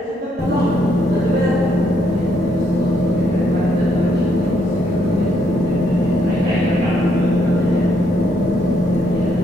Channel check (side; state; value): both; normal; correlation 0.73